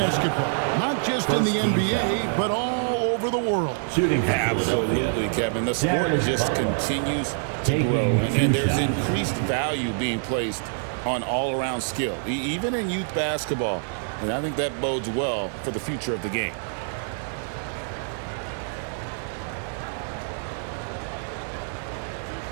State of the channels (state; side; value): silent; left; digital silence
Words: Not just in the NBA, but all over the world. Absolutely, Kevin. The sport just continues to grow. And there's increased value being placed on all-around skill, even in youth basketball. And I think that bodes well for the future of the game.